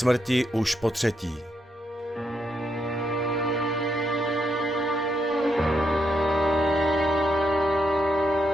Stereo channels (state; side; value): normal; both; correlation 0.79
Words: už po 3.